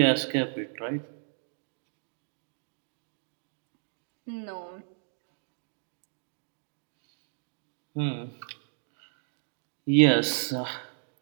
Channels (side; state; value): left; silent; digital silence